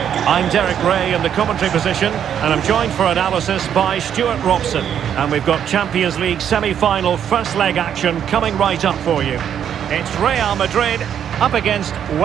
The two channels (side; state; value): left; quieter; 9.1 dB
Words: I'm Derek Ray in the commentary position, and I'm joined for analysis by Stuart Robson. And we've got Champions League semi-final first leg action coming right up for you. It's Real Madrid up against